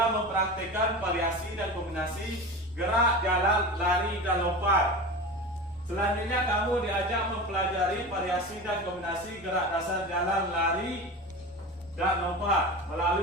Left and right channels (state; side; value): normal; both; correlation 0.29